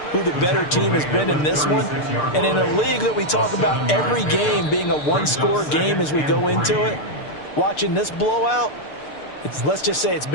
who the better team has been in this one. And in a league that we talk about every game being a one-score game as we go into it, watching this blowout, let's just say it's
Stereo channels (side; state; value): right; late; 6.7 ms